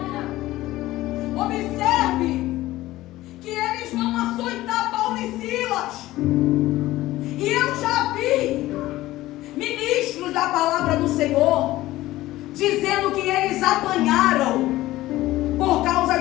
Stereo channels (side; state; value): right; quieter; 16.6 dB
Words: Observe que eles vão açoitar Paulo e Silas. E eu já vi ministros da palavra do Senhor dizendo que eles apanharam por causa